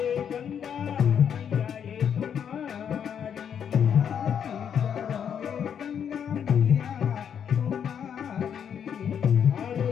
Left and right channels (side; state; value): right; quieter; 8.2 dB